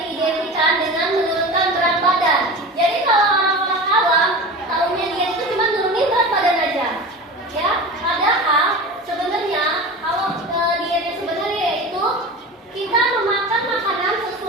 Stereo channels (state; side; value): normal; both; correlation 0.31